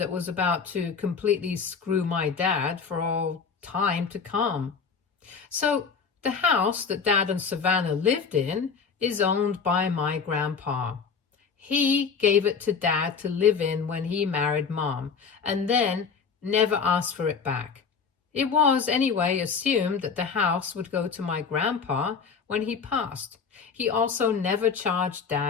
was about to completely screw my dad for all time to come. So the house that Dad and Savannah lived in is owned by my grandpa. He gave it to Dad to live in when he married Mom, and then never asked for it back. It was, anyway, assumed that the house would go to my grandpa when he passed. He also never charged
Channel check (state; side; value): quieter; right; 5.8 dB